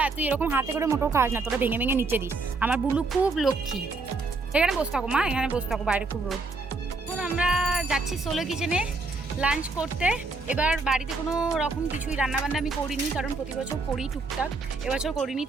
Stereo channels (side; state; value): left; quieter; 3.7 dB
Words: তুই এরকম হাতে করে মোটেও খাস না, তোরা ভেঙে ভেঙে নিচে দিস। আমার বুলু খুব লক্ষ্মী। এখানে বসে থাকো মা, এখানে বসে থাকো, বাইরে খুব রোদ। এখন আমরা যাচ্ছি সোলো কিচেনে। লাঞ্চ করতে। এবার বাড়িতে কোনো রকম কিছুই রান্নাবান্না আমি করিনি, কারণ প্রতি বছর করি টুকটাক, এবছর করিনি।